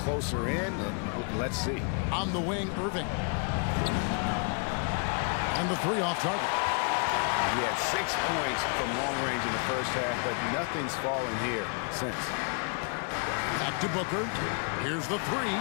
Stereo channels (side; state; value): right; quieter; 38.0 dB